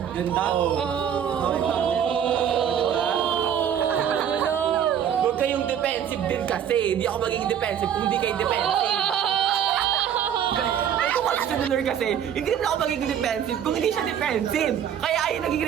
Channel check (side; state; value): left; quieter; 9.0 dB